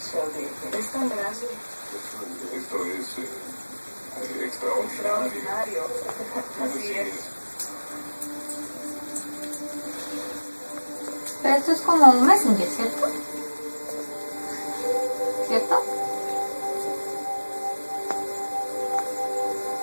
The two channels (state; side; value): inverted; both; correlation -1.00